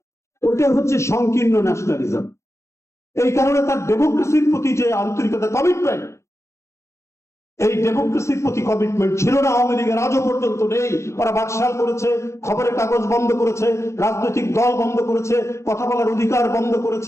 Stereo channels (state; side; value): late; right; 0.14 ms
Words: ওইটা হচ্ছে সংকীর্ণ ন্যাশনালিজম। এই কারণে তার ডেমোক্রেসির প্রতি যে আন্তরিকতা, কমিটমেন্ট, এই ডেমোক্রেসির প্রতি কমিটমেন্ট ছিল না আওয়ামী লীগের, আজও পর্যন্ত নেই। ওরা বাকশাল করেছে, খবরের কাগজ বন্ধ করেছে, রাজনৈতিক দল বন্ধ করেছে, কথা বলার অধিকার বন্ধ